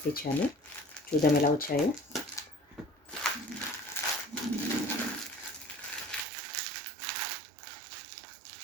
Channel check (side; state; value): left; drops out; at 6.2 s